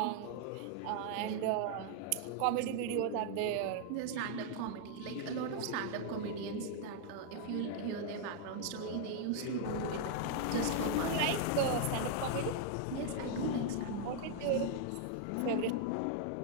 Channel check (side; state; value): both; different; correlation 0.00